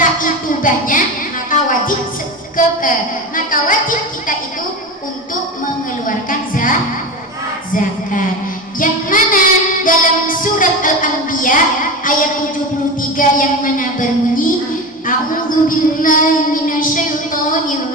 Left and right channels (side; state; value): both; normal; correlation 0.25